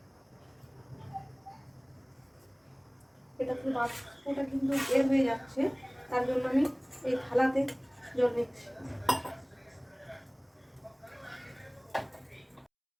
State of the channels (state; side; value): identical; both; correlation 1.00